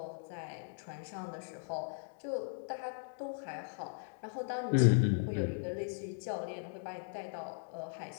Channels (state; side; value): silent; right; digital silence